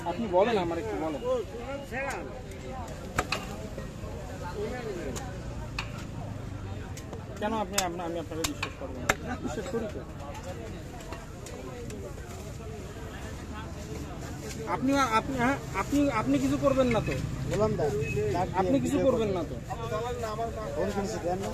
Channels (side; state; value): both; identical; correlation 1.00